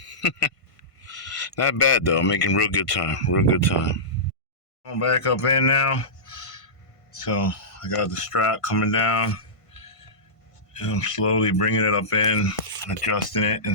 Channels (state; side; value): late; right; 1.5 ms